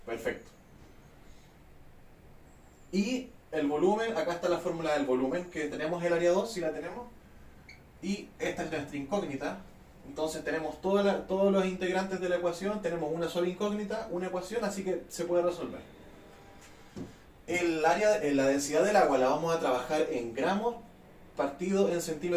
Perfecto. Y el volumen, acá está la fórmula del volumen, que tenemos el área 2, si la tenemos. Y esta es nuestra incógnita. Entonces tenemos todos los integrantes de la ecuación, tenemos una sola incógnita, una ecuación, así que se puede resolver. La densidad del agua la vamos a trabajar en gramos partido en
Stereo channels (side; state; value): both; identical; correlation 1.00